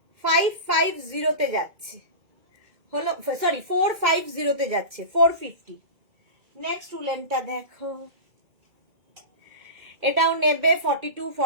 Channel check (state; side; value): late; left; 2.3 ms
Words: 550-তে যাচ্ছে, হলো সরি 450-তে যাচ্ছে। 450। নেক্সট উলেনটা দেখো, এটাও নেবে 42,